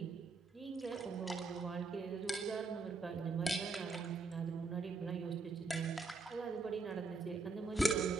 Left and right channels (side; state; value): left; quieter; 3.9 dB